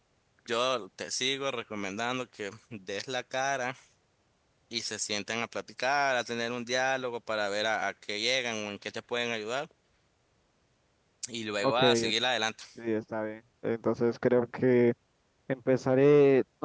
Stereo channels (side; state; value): both; identical; correlation 1.00